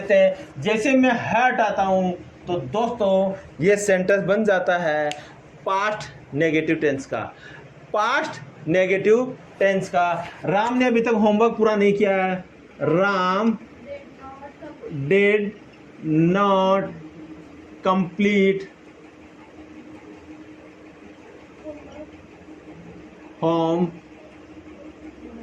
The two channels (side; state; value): both; identical; correlation 1.00